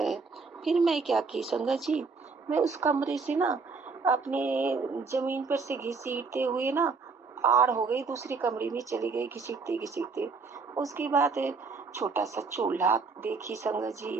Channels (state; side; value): quieter; left; 4.5 dB